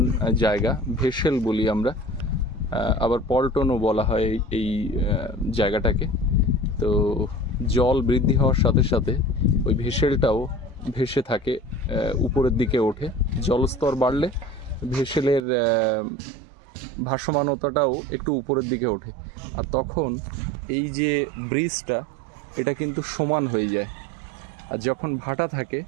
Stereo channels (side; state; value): left; drops out; at 15.4 s